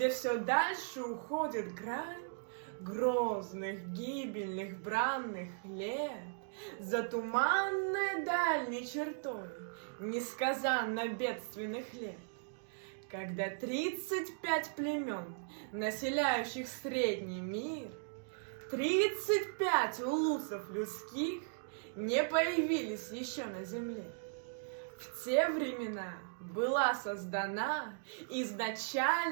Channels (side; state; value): left; silent; digital silence